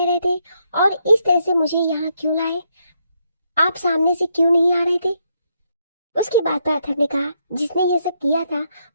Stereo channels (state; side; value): inverted; both; correlation -0.77